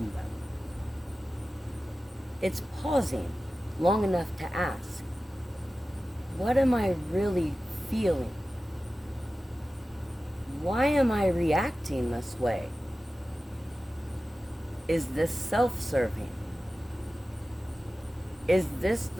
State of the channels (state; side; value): normal; both; correlation 0.95